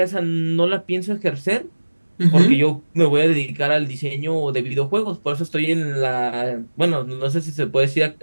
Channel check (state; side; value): inverted; both; correlation -1.00